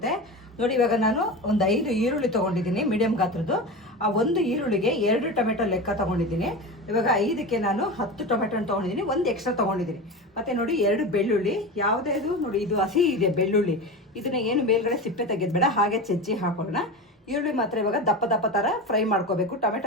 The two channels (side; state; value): both; normal; correlation 0.26